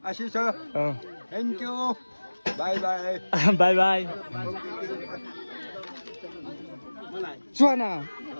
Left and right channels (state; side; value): inverted; both; correlation -1.00